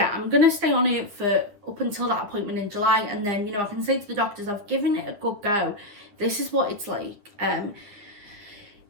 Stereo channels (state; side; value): late; left; 9.8 ms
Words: I'm going to stay on it for up until that appointment in July. And then, you know, I can say to the doctors, I've given it a good go. This is what it's like.